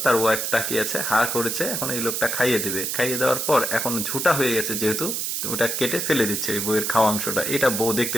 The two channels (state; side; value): noise; right; hiss, 1 dB below the sound